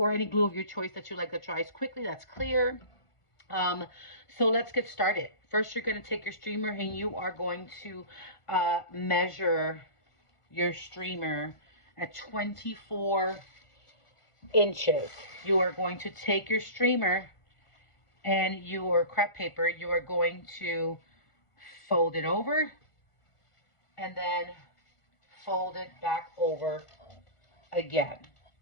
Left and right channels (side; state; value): right; late; 1.5 ms